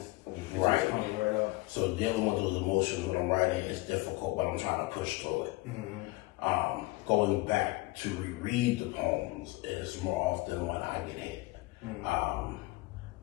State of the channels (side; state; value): right; quieter; 21.2 dB